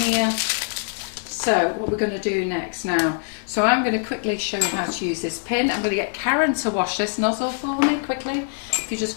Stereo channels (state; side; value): silent; right; digital silence